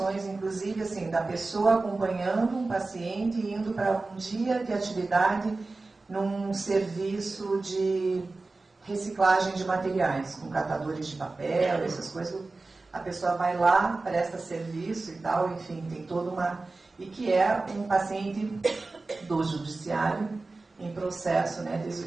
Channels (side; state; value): left; quieter; 3.5 dB